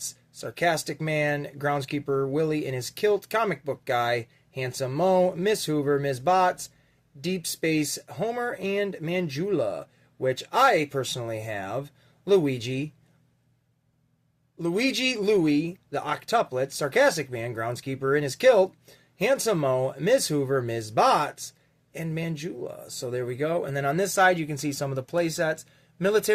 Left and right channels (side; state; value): both; identical; correlation 1.00